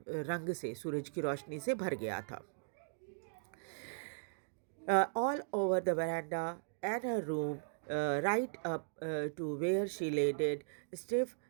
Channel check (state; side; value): silent; left; digital silence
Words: रंग से, सूरज की रोशनी से भर गया था। All over the veranda and her room, right up to where she lay dead, stiff,